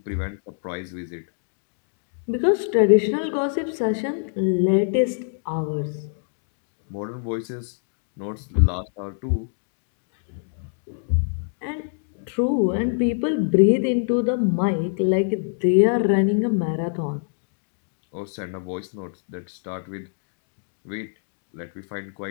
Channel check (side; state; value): right; silent; digital silence